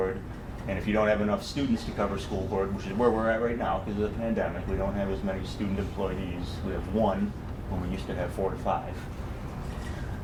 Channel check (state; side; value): identical; both; correlation 1.00